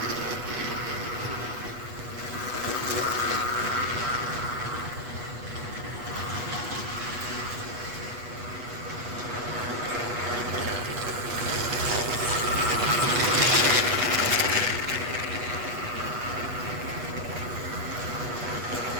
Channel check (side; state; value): left; late; 8.2 ms